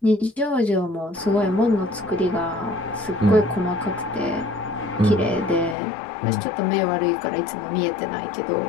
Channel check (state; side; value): drops out; right; at 5.8 s